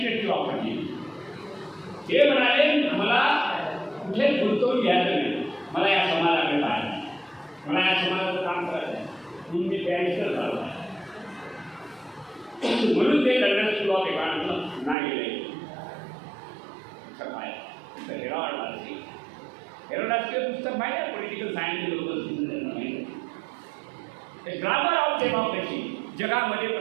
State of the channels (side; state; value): left; drops out; at 15.0 s